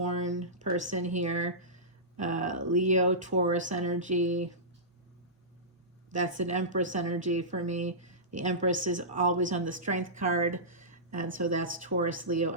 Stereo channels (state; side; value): normal; both; correlation -0.18